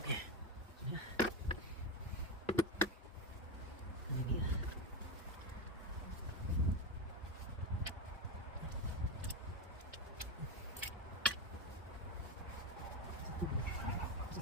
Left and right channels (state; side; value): normal; both; correlation 0.14